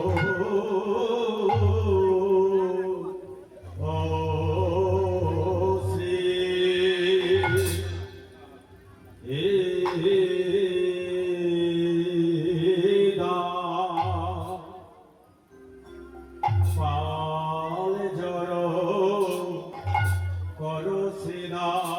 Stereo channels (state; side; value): identical; both; correlation 1.00